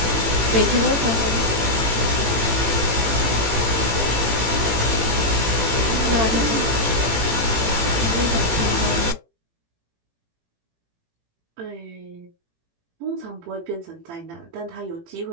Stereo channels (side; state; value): left; late; 18 ms